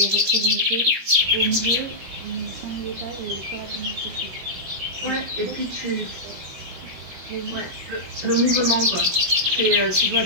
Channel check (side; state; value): left; late; 21 ms